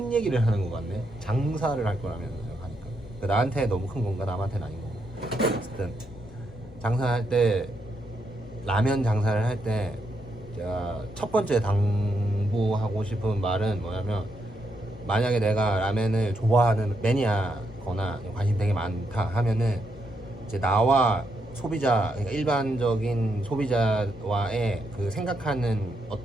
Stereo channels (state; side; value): normal; both; correlation 0.80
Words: 얘기를 하는 것 같네. 장사를 할 거라면 하니까 나한테 너무 큰 건가 남한테는 아닌 건가. 어쨌든 장사할 때 라면 장사를 할 때 제가 첫 번째 당부하고 싶은 말은 뭐냐면 만약에 내가 라면을 좋아하는 매니아거나 관심 되게 많다 하면은 이제 나와 소비자 그러니까 일반적인 소비자와의 그 생각하는